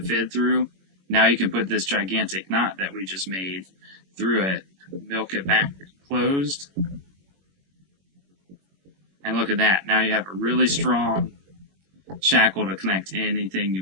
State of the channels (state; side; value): late; left; 21 ms